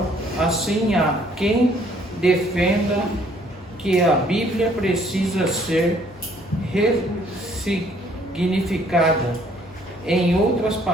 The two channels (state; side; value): normal; both; correlation 0.62